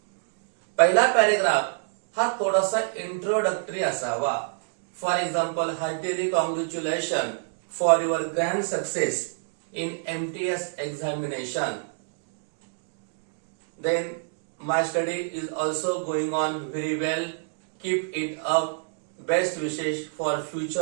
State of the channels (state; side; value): silent; left; digital silence